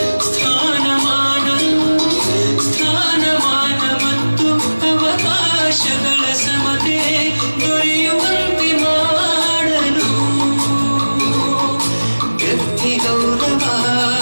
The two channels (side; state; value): both; inverted; correlation -1.00